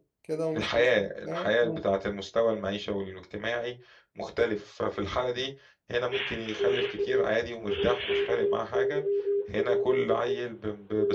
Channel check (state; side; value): identical; both; correlation 1.00